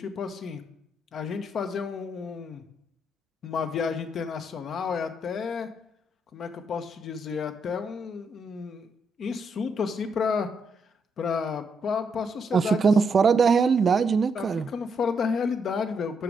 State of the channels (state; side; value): normal; both; correlation 0.78